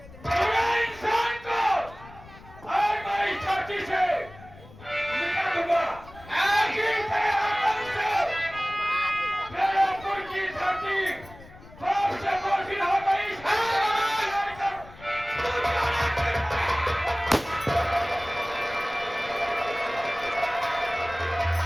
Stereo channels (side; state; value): left; noise; rumble, 20 dB below the sound